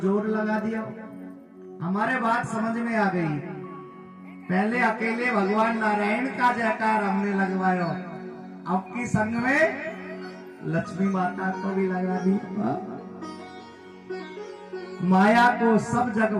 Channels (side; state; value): both; identical; correlation 1.00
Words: लगा दिया, हमारे बात समझ में आ गई। पहले अकेले भगवान नारायण का जयकार हमने लगवायो, अब की संग में लक्ष्मी माता को भी लगा दी। माया को सब जग